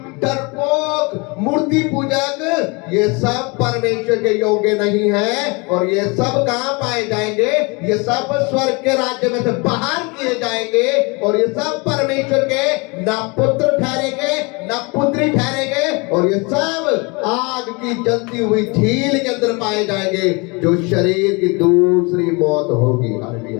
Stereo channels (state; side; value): quieter; right; 28.7 dB